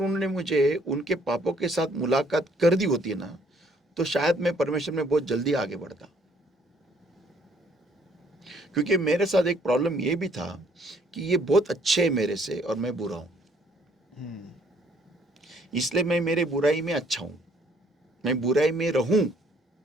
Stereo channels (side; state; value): both; normal; correlation 0.63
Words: मुझे उनके पापों के साथ मुलाकात कर दी होती ना, तो शायद मैं परमेश्वर में बहुत जल्दी आगे बढ़ता। क्योंकि मेरे साथ एक प्रॉब्लम ये भी था कि ये बहुत अच्छे है मेरे से और मैं बुरा हूं, इसलिए मैं मेरे बुराई में अच्छा हूं, मैं बुराई में रहूं